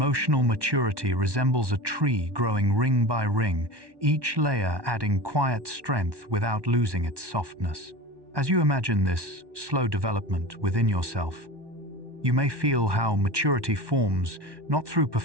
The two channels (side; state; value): left; late; 1.1 ms